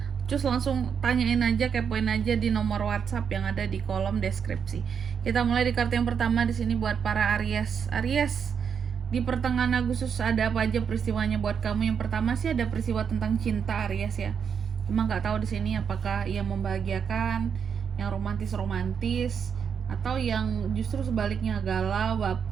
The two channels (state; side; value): quieter; left; 7.1 dB